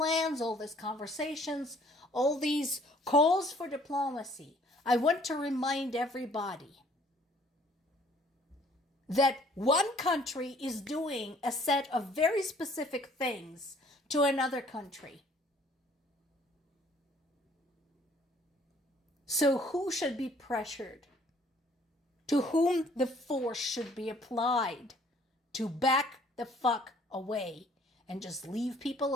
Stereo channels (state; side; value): normal; both; correlation 0.58